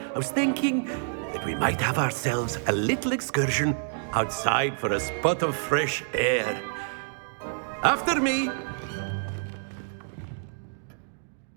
I was thinking that we might have ourselves a little excursion outside for a spot of fresh air. After me.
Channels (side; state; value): left; silent; digital silence